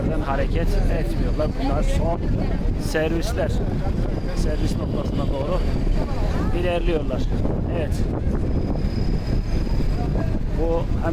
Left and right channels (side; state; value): both; identical; correlation 1.00